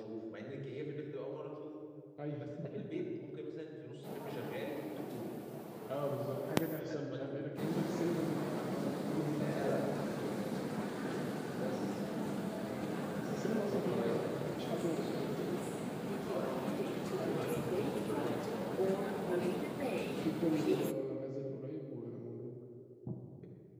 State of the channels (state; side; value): identical; both; correlation 1.00